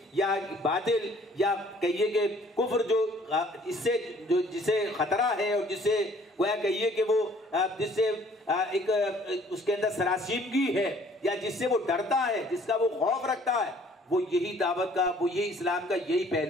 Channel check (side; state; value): both; normal; correlation 0.57